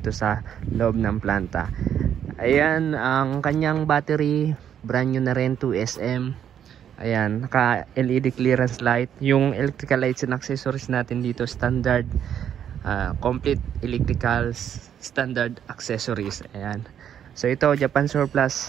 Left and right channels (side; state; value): left; quieter; 9.3 dB